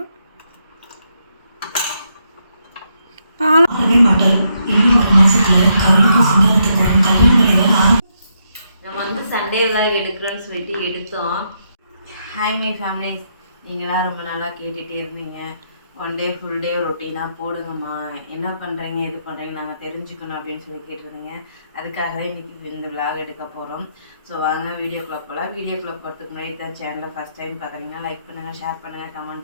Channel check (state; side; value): inverted; both; correlation -0.79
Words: நம்ம வந்து சண்டே விலாக் எடுக்கிறோன்னு சொல்லிட்டு எடுத்தோம். ஹாய் மை ஃபேமிலிஸ், நீங்களாம் ரொம்ப நாளாக கேட்டுகிட்டே இருந்தீங்க. ஒன் டே ஃபுல் டே ரொட்டீனாக போடுங்கம்மா, என்ன பண்ணுறீங்க இது பண்ணுறீங்க நாங்கள் தெரிஞ்சுக்கணும் அப்படின்னு சொல்லி கேட்டிருந்தீங்க. அதுக்காக இன்றைக்கி இந்த விலாக் எடுக்க போகிறோம். ஸோ வாங்க வீடியோக்குள்ளே போகலாம். வீடியோக்குள்ளே போகிறதுக்கு முன்னாடி தான் சேனலை ஃபஸ்ட் டைம் பார்க்குறீங்கன்னா லைக் பண்ணுங்கள், ஷேர் பண்ணுங்கள்,